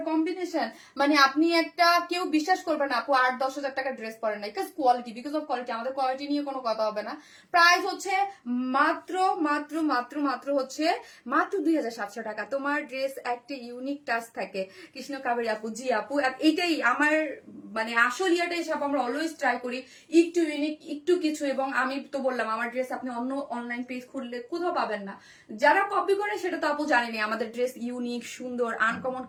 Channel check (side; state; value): both; identical; correlation 1.00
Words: কম্বিনেশন, মানে আপনি একটা কেউ বিশ্বাস করবে না আপু 8-10 হাজার টাকার ড্রেস পরেন না, because quality, because of quality. আমাদের কোয়ালিটি নিয়ে কোনো কথা হবে না। প্রাইস হচ্ছে মাত্র মাত্র মাত্র মাত্র হচ্ছে মাত্র 2,700 টাকা। তোমার ড্রেস একটা ইউনিক টাচ থাকে, কৃষ্ণ কাবেরী আপু। জি আপু, এটাই আমার মানে আসল ইয়াটা হিসাব, আমরা অলওয়েজ ট্রাই করি একটু ইউনিক, একটু কিছু। এবং আমি তো বললাম, আমার ড্রেস আপনি অন্য অনলাইন পেজ খুললে কোথাও পাবেন না। যারা কপি করে সেটা তো আপু জানেনি, আমাদের ড্রেস ইউনিক, সুন্দর, আনকমন